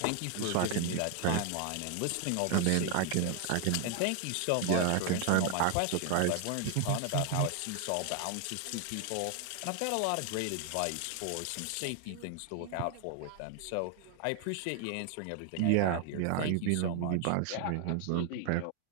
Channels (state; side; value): different; both; correlation 0.00